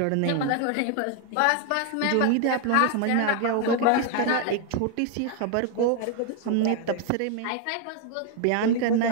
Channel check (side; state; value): both; different; correlation 0.01